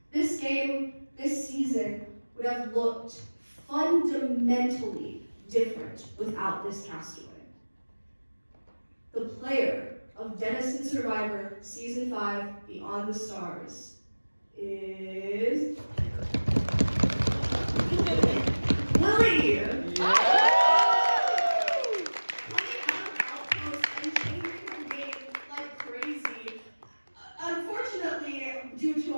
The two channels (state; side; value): inverted; both; correlation -1.00